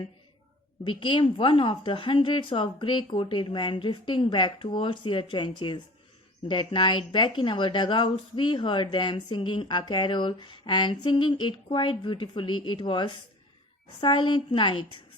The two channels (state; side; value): normal; both; correlation 0.43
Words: became one of the hundreds of grey-coated men drifting back towards their trenches. That night, back in our dugouts, we heard them singing a carol and singing it quite beautifully. It was Silent Night.